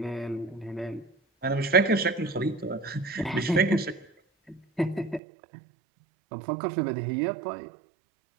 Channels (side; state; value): left; drops out; at 5.2 s